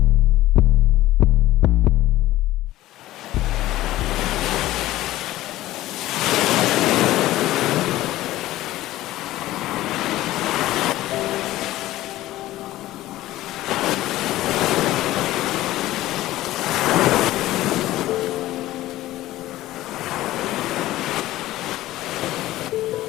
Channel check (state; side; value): quieter; right; 15.8 dB